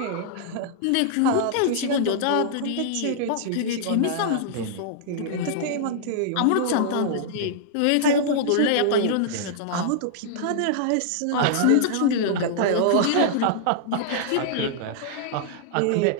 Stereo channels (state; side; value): different; both; correlation -0.01